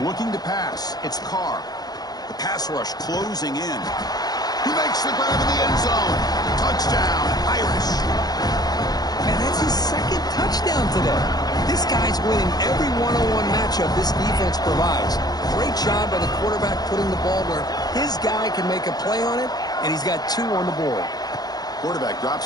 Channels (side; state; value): right; late; 0.19 ms